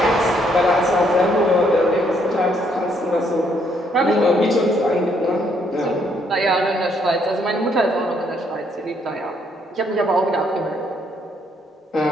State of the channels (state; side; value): normal; both; correlation 0.70